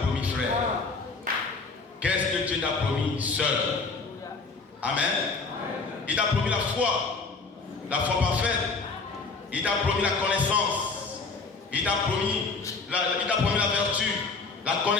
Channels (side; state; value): right; quieter; 4.2 dB